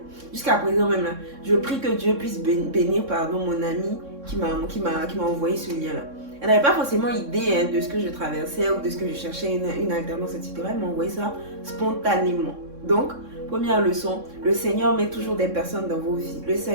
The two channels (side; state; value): left; late; 3.6 ms